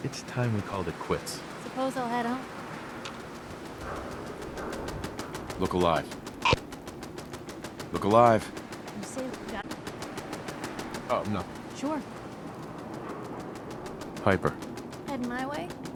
It's time we called it quits. Suppose I'll head home. Look alive. Look alive. You say that? Oh, no. Sure. Piper. Heading my way?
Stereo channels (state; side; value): identical; both; correlation 1.00